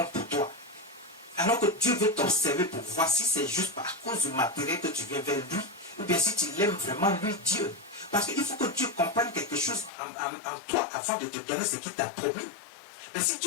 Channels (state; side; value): drops out; right; at 9.9 s